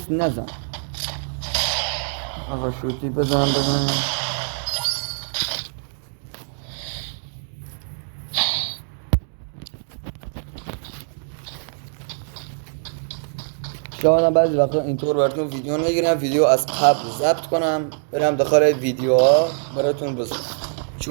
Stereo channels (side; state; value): left; silent; digital silence